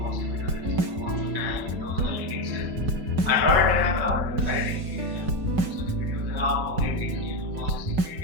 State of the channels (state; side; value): late; left; 5.3 ms